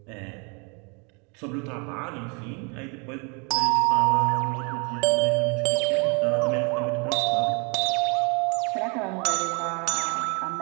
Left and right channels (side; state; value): left; quieter; 33.3 dB